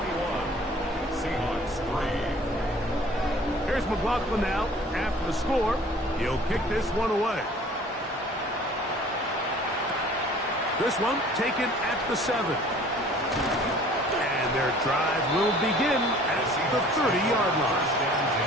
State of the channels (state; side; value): normal; both; correlation 0.50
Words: Seahawks 3. Here's McLaughlin now. After the score, he'll kick this one away. This one taken at the 7. And their drive will begin at the 30-yard line. First and 10